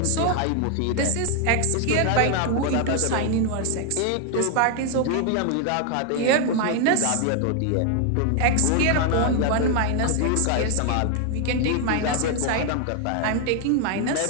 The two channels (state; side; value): different; both; correlation 0.00